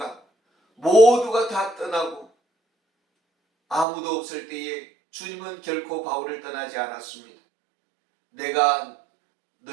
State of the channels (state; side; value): drops out; left; at 3.9 s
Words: 모두가 다 떠나고 아무도 없을 때에 주님은 결코 바울을 떠나지 않았습니다. 내가